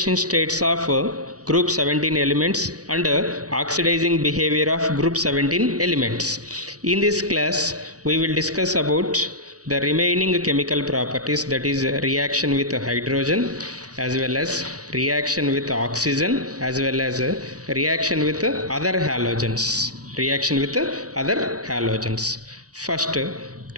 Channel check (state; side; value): late; left; 0.67 ms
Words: states of group 17 elements and oxidizing behavior of group 17 elements. In this class we will discuss about the remaining chemical properties, that is reaction with hydrogen as well as reaction with oxygen as well as reaction with other halogens. First,